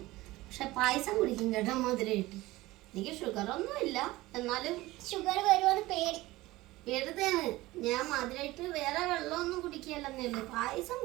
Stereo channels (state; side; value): quieter; left; 18.7 dB